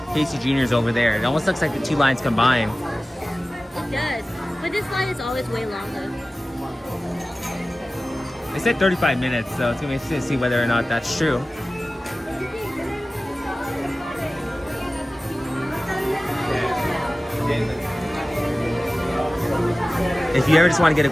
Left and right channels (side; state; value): both; normal; correlation 0.96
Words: Casey Jr. is over there. It almost looks like the two lines combined. It does. But this line is always way longer. They said 35 minutes, so it's gonna be interesting to see whether or not that's true. If you ever just want to get